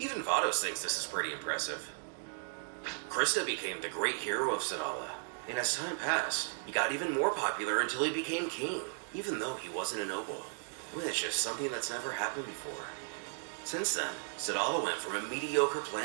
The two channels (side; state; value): left; silent; 54 dB below the other